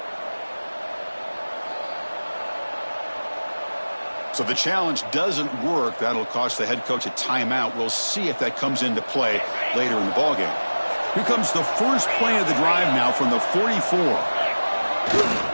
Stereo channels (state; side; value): inverted; both; correlation -1.00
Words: So the challenge doesn't work. That'll cost the head coach a timeout. We'll see if that comes into play later in the ballgame. Here comes the first play of the drive now from the 44.